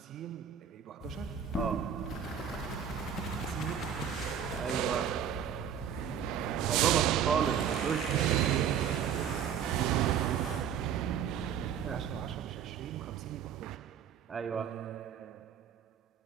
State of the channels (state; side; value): quieter; left; 8.3 dB